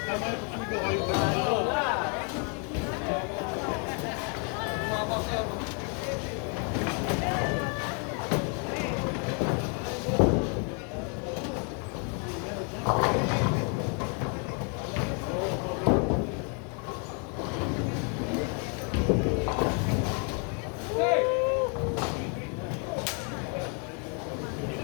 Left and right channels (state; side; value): quieter; right; 38.4 dB